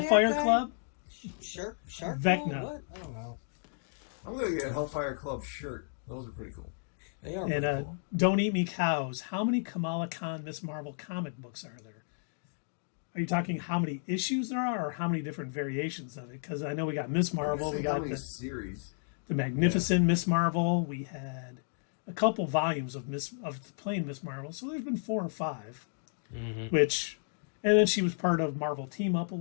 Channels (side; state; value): right; silent; digital silence